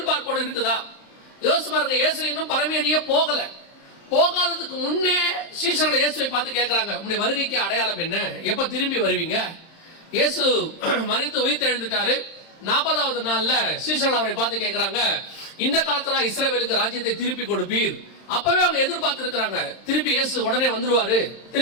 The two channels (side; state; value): right; late; 31 ms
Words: இருக்குதா? யோசிச்சு பாருங்க. இயேசு இன்னும் பரமேறியே போகல. போகாததுக்கு முன்னே சீஷர்களை இயேசுவை பார்த்து கேட்கிறாங்க, உங்களுடைய வருகைக்கு அடையாளம் என்ன, எப்ப திரும்பி வருவீங்க? இயேசு மரித்து உயிர்த்து எழுந்துட்டாரு. 40வது நாள்ல சீஷர்கள் அவரை பார்த்து கேட்கிறாங்க, இந்த காலத்துல இஸ்ரவேலுக்கு ராஜ்யத்தை திருப்பி கொடுப்பீர். அப்பவே அவங்க எதிர்பார்த்து இருக்கிறாங்க, திருப்பி இயேசு உடனே வந்துருவாரு,